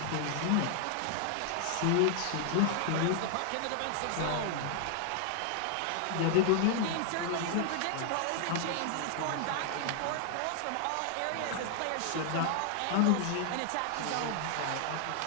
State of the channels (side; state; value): both; different; correlation 0.00